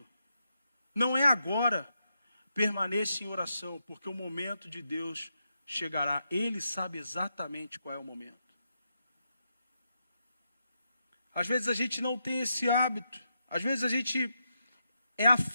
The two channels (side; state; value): both; inverted; correlation -0.83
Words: não é agora, permaneça em oração, porque o momento de Deus chegará. Ele sabe exatamente qual é o momento. Às vezes a gente não tem esse hábito, às vezes a gente é